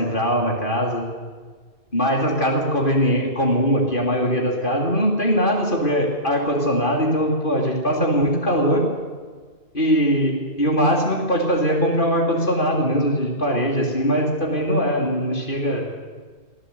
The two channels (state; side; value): late; right; 2.5 ms